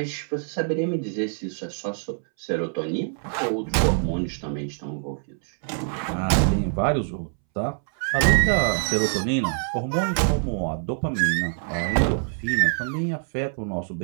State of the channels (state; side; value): silent; left; 62 dB below the other